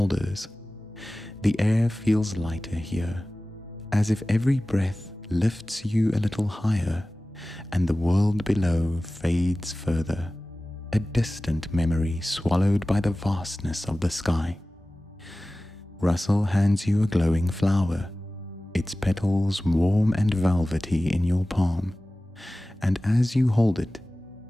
The air feels lighter here, as if every breath lifts you a little higher, and the world below fades further, a distant memory swallowed by the vastness of the sky. Russell hands you a glowing flower, its petals warm and velvety in your palm, and as you hold it,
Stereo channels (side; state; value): both; normal; correlation 0.97